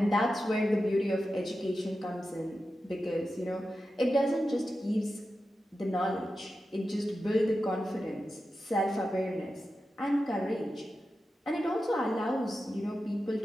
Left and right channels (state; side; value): normal; both; correlation 0.91